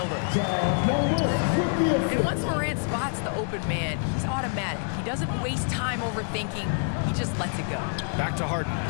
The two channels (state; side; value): silent; right; 60 dB below the other